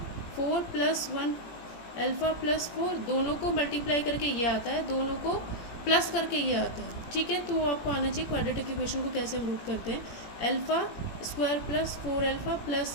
4 plus 1 alpha plus 4, दोनों को मल्टीप्लाई करके ये आता है, दोनों को प्लस करके ये आता है। ठीक है, तो आपको आना चाहिए क्वाड्रेटिक इक्वेशन को कैसे हम रूट करते हैं। Alpha square plus 4 alpha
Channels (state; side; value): late; right; 18 ms